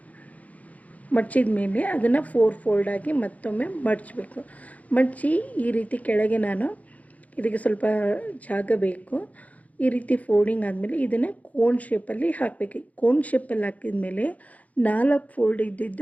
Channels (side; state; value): right; late; 0.071 ms